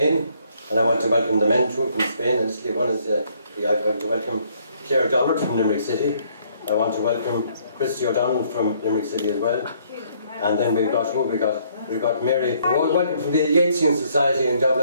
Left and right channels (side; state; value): both; inverted; correlation -0.66